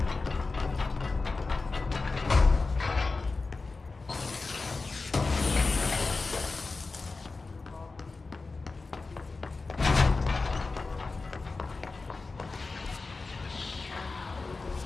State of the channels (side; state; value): right; quieter; 3.8 dB